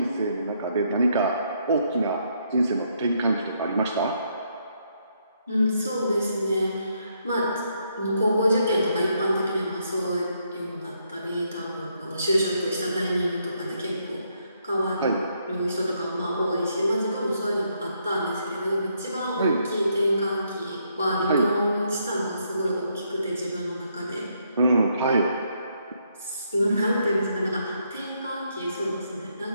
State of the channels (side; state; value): both; inverted; correlation -0.75